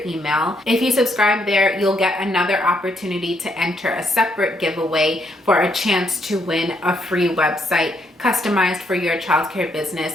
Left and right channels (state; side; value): normal; both; correlation 0.74